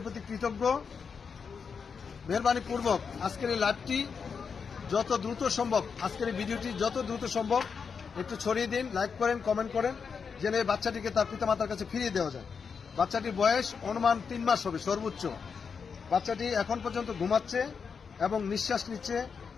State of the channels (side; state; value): right; quieter; 5.9 dB